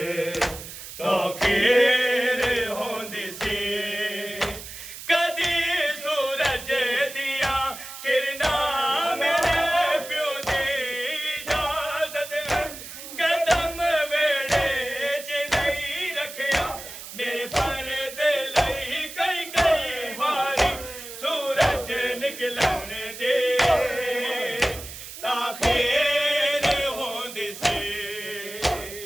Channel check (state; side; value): noise; right; hiss, 12 dB below the sound